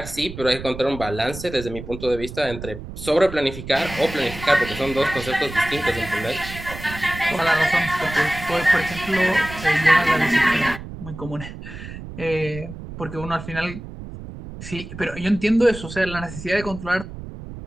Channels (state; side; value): noise; right; rumble, 11 dB below the sound